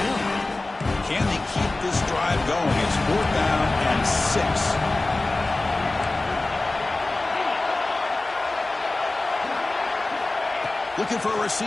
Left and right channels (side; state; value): right; quieter; 3.0 dB